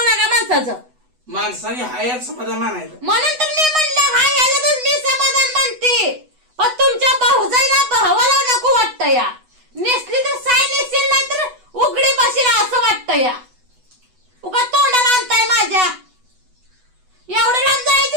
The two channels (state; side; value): late; left; 8.1 ms